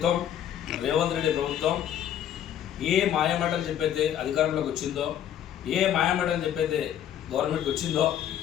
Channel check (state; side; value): quieter; right; 10.4 dB